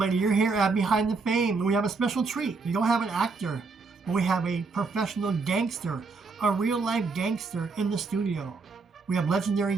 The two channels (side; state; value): left; quieter; 4.3 dB